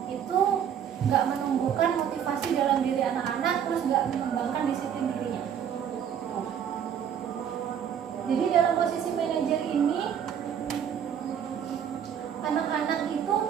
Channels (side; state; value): left; quieter; 8.7 dB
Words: Itu nggak menumbuhkan motivasi dalam diri anak-anak, terus nggak mengembangkan disiplin dirinya. Jadi dalam posisi manajer ini, anak-anak itu